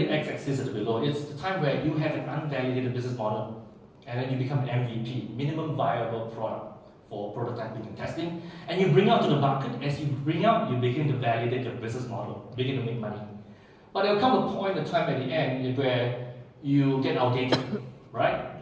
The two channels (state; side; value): identical; both; correlation 1.00